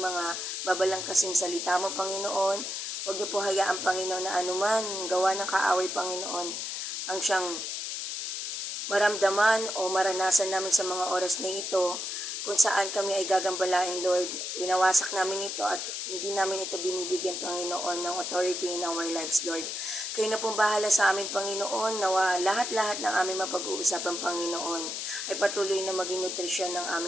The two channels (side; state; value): left; noise; hiss, 4 dB below the sound